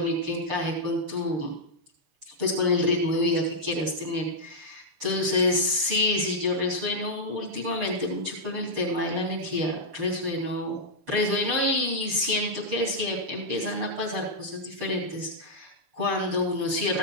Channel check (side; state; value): left; late; 6.7 ms